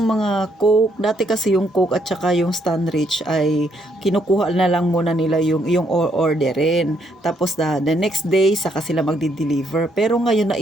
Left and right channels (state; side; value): normal; both; correlation 0.73